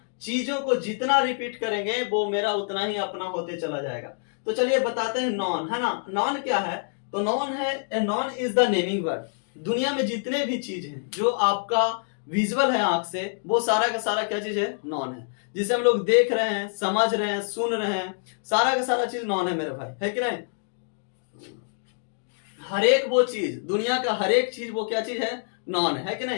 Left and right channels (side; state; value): right; silent; 61 dB below the other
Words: चीजों को जितना रिपीट करेंगे वो मेरा उतना ही अपना होते चला जाएगा। तो चलिए बताते हैं नॉन, है ना। नॉन क्या है, तो नॉन है, non is the naming word. दुनिया में जितने भी चीज हैं जो आपका विजुअल है आंख से, वो सारा का सारा क्या चीज है, नॉन है। जिसे हम लोग देख रहे हैं, समझ रहे हैं, सुन रहे हैं, सारा का सारा चीज नॉन है मेरे भाई, है कि नहीं। हर एक वो चीज, दुनिया का हर एक चीज वो क्या चीज है, नॉन है कि